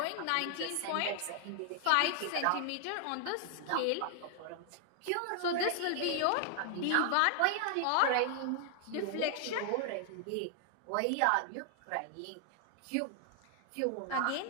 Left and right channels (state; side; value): different; both; correlation 0.00